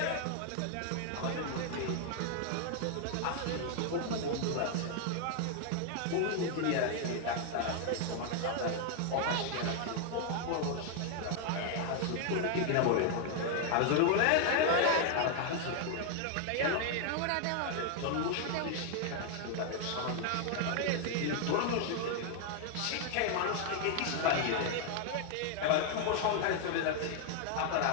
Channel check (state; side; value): different; both; correlation 0.00